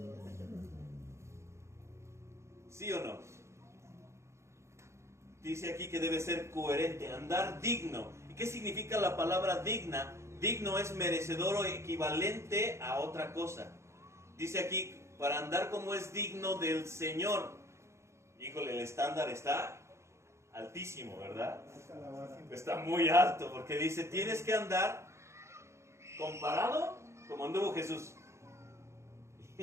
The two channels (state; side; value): late; left; 0.13 ms